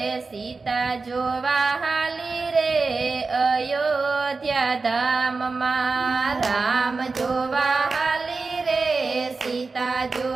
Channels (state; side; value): quieter; left; 4.1 dB